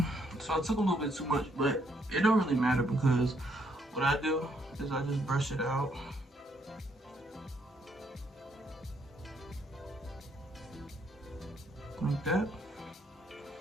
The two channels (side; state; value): both; normal; correlation 0.72